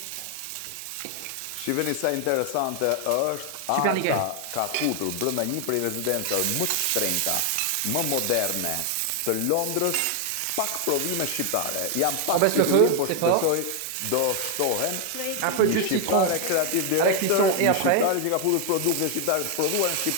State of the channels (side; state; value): both; different; correlation 0.00